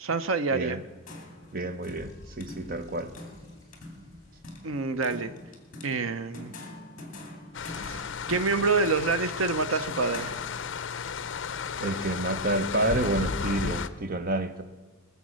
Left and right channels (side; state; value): both; normal; correlation -0.03